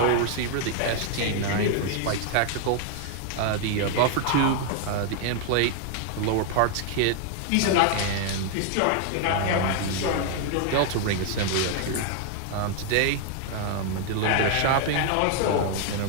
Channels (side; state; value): both; different; correlation 0.00